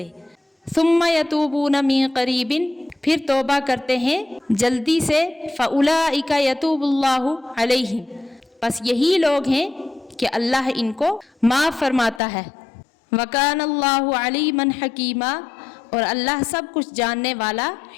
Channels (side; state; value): right; drops out; at 12.2 s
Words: ثم یتوبون من قریب، پھر توبہ کرتے ہیں جلدی سے، فاولئک یتوب اللہ علیہم، بس یہی لوگ ہیں کہ اللہ ان کو معاف فرماتا ہے۔ وکان اللہ علیما حکیما، اور اللہ سب کچھ جاننے والا